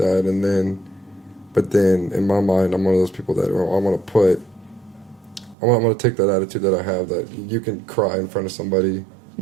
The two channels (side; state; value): left; drops out; at 5.6 s